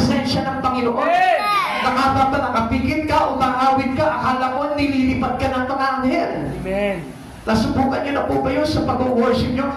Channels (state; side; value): identical; both; correlation 1.00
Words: ng Panginoon. Nakapigil ka, umaawit ka, akala mo nililipat ka ng mga anghel. Amen. Nasubukan niyo na po ba yun sa pag-worship niyo?